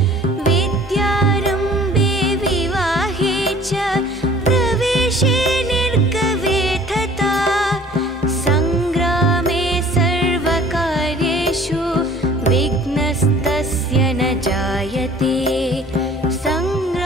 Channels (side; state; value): both; normal; correlation 0.51